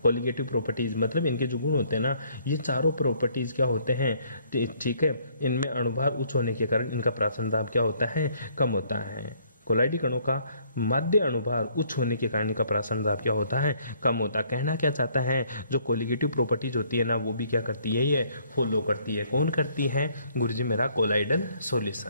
कोलिगेटिव प्रॉपर्टीज, मतलब इनके जो गुण होते हैं ना, ये चारों प्रॉपर्टीज क्या होते हैं, ठीक है, इनमें अणुभार उच्च होने के कारण इनका प्रासरण दाब क्या होता है, कम होता है। कोलाइडी कणों का माध्य अणुभार उच्च होने के कारण इनका प्रासरण दाब क्या होता है, कम होता है। कहना क्या चाहता है, जो कोलिगेटिव प्रॉपर्टीज होती है ना, वो भी क्या करती है, ये फॉलो करती है। कौन करती है गुरुजी, मेरा कोलाइडल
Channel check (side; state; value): both; inverted; correlation -0.64